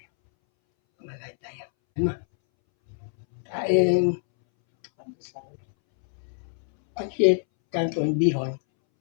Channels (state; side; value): silent; right; 61 dB below the other